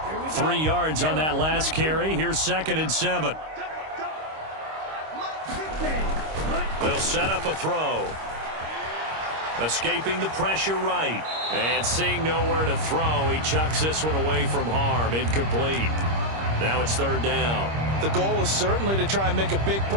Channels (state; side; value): late; left; 26 ms